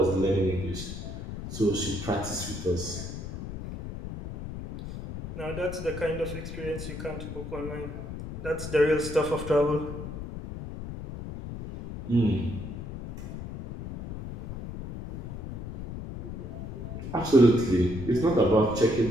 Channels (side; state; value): left; noise; rumble, 9 dB below the sound